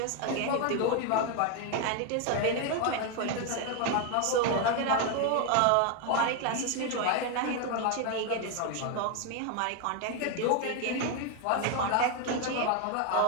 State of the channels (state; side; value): different; both; correlation 0.01